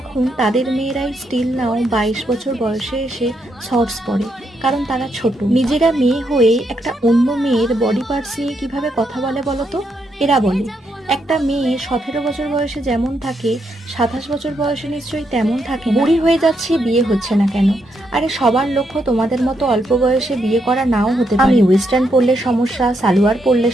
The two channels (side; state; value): both; normal; correlation 0.79